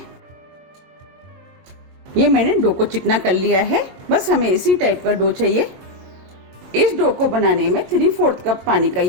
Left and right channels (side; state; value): left; late; 22 ms